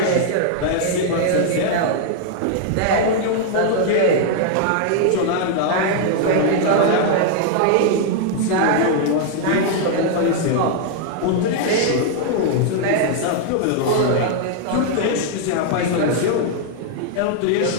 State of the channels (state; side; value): different; both; correlation 0.00